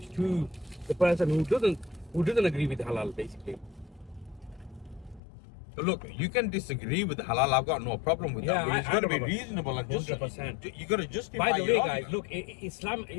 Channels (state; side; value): drops out; right; at 5.2 s